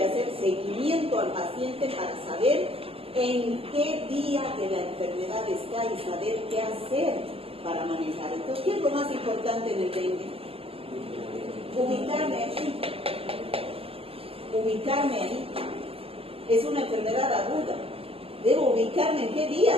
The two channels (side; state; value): left; late; 0.28 ms